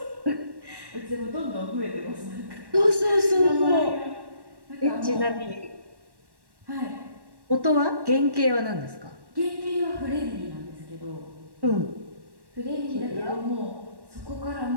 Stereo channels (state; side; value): late; left; 1.1 ms